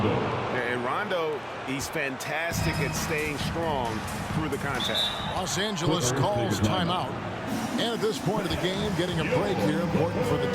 And Rondo, he's fantastic at staying strong through the contact. Los Angeles calls timeout. And at this point of the game, getting a break here, important for the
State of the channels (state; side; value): identical; both; correlation 1.00